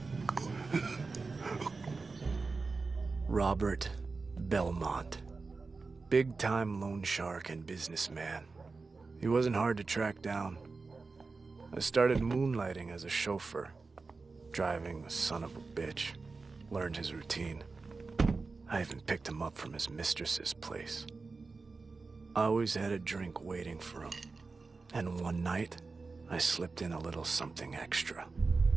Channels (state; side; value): quieter; left; 4.1 dB